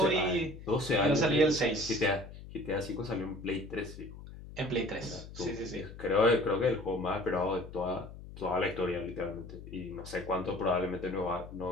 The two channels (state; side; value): noise; left; hum, 14 dB below the sound